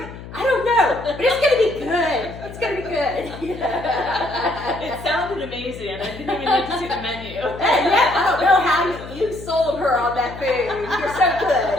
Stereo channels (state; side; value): noise; left; hum, 14 dB below the sound